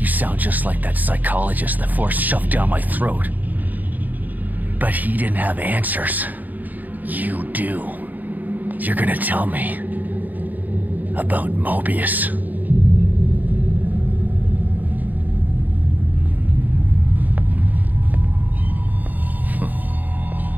sound just like that psychologist that Forrest shoved down my throat. But he didn't have answers. You do. You're gonna tell me about Mobius.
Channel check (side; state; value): left; late; 0.083 ms